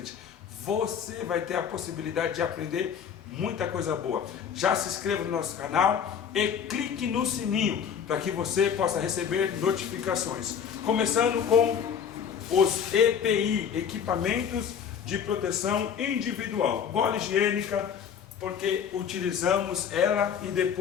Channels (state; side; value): quieter; right; 7.7 dB